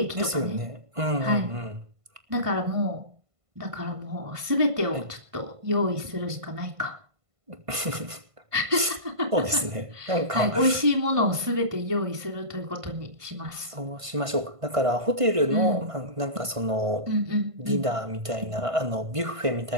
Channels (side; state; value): left; late; 1.5 ms